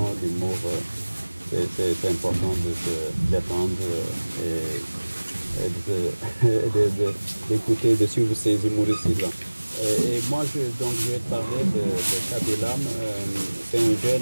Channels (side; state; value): both; inverted; correlation -1.00